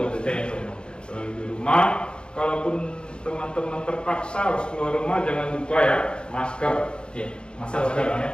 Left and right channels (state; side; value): late; right; 0.052 ms